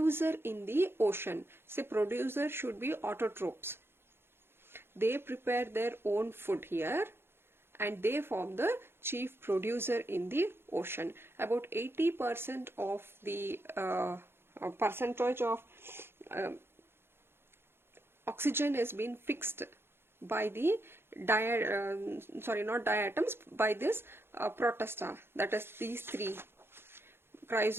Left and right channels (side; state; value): left; late; 0.11 ms